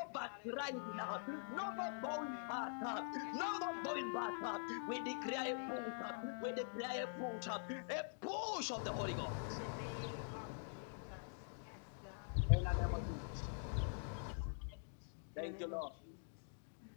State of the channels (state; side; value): silent; right; digital silence